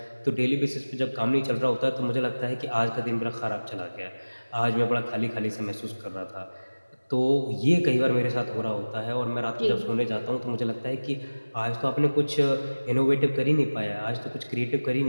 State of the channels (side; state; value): both; inverted; correlation -1.00